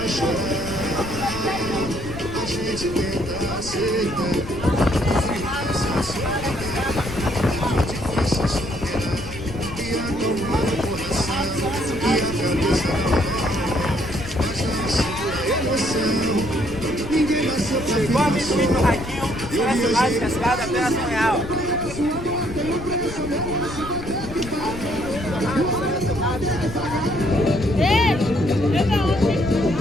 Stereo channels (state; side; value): noise; left; rumble, 11 dB below the sound